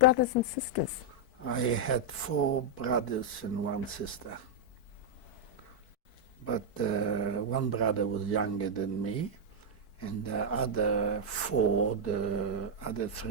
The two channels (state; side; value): late; right; 4.6 ms